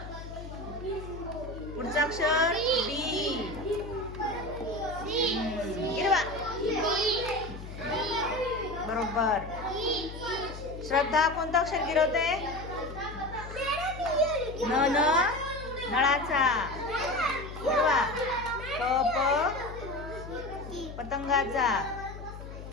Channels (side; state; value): left; noise; hum, 11 dB below the sound